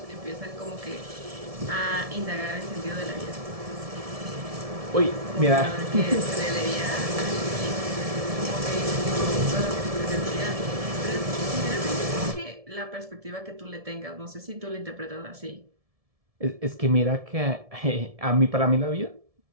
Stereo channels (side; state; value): left; late; 1.7 ms